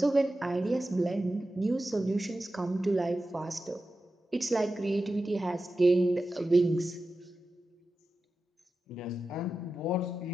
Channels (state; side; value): normal; both; correlation 0.92